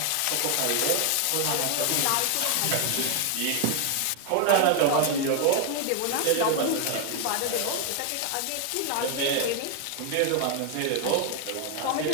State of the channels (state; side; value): different; both; correlation 0.00